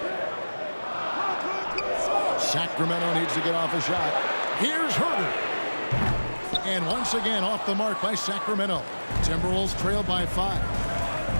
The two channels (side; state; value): both; inverted; correlation -1.00